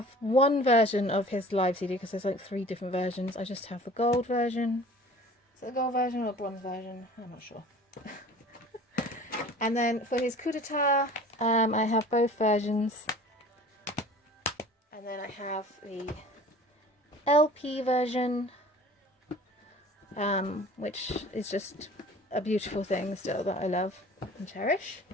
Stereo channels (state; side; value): normal; both; correlation 0.45